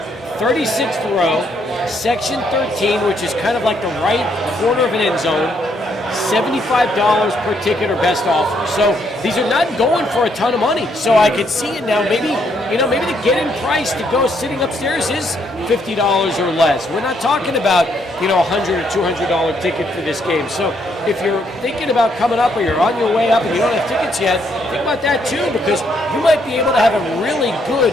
36th row, section 13, which is kind of like the right corner of an end zone, $75 per ticket or best offer. So these are not going for a ton of money. So I could see it now. Maybe the get-in price to go sitting upstairs is $50 or less. We're not talking about, $100 or $200 ticket for this game. So if you're thinking about coming up or you're on your way up and you don't have tickets yet, think about that too, because you might be able to have a really good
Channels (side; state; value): both; normal; correlation 0.72